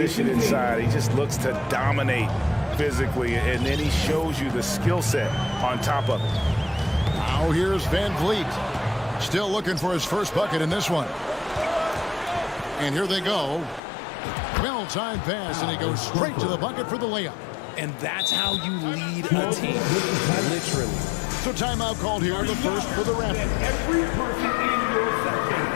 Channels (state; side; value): drops out; right; at 13.8 s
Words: inside, he just looks to dominate physically, and then he shows you the skill set on top of it. Now here's Van Vliet. Still looking for his first bucket in this one. And here they go. Well-timed pass, and he goes straight to the bucket for the layup. And that's how you lead a team, literally. So timeout called here, the first for the Raptors. Every person in your section